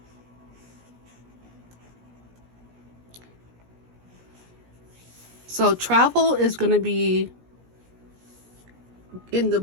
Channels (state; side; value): late; left; 17 ms